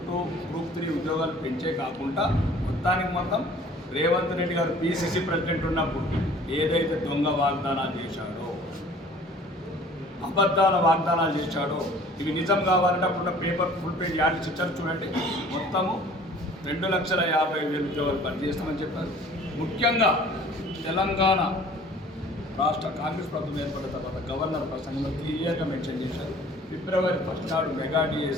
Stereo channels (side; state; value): both; normal; correlation 0.50